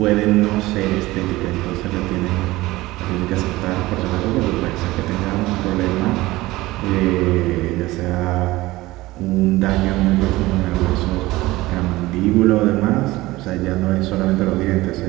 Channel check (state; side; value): quieter; left; 18.8 dB